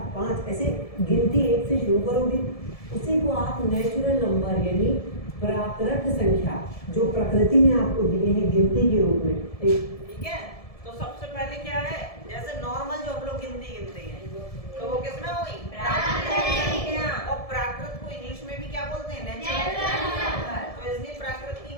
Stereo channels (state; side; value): late; right; 1.7 ms